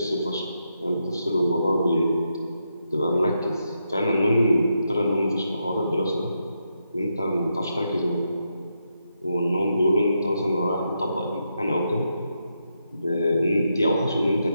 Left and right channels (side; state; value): both; inverted; correlation -0.83